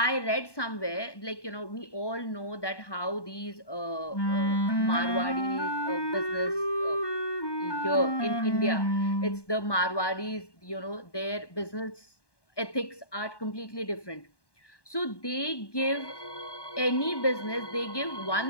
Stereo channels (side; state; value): right; late; 1.2 ms